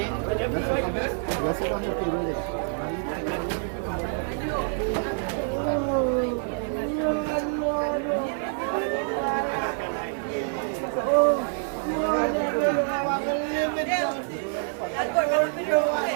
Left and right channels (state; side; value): silent; left; 57 dB below the other